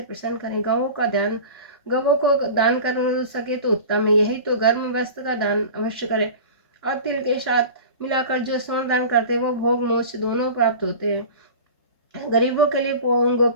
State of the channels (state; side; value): inverted; both; correlation -0.35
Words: प्रसन्न करें। गवों को दान कर सके तो उत्तम है। यही तो गर्म वस्त्र का दान अवश्य करें। और तिल के साथ मिलाकर जो स्वर्ण दान करते हैं वो भोग मोक्ष दोनों प्राप्त होते हैं। गरीबों के लिए